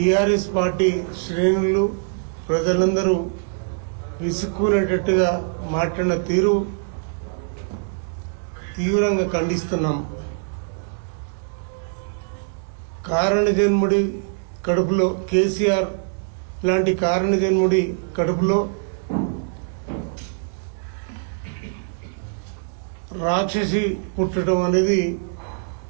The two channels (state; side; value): silent; left; digital silence